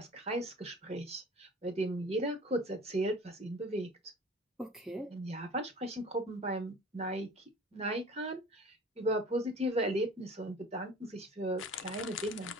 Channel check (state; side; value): normal; both; correlation 0.44